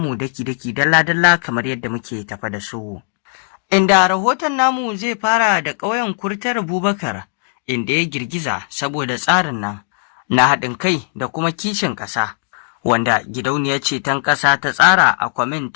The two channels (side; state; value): right; silent; 58 dB below the other